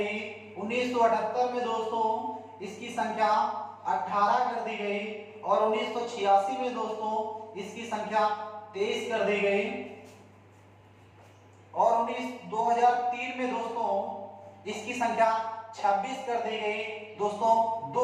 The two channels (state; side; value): identical; both; correlation 1.00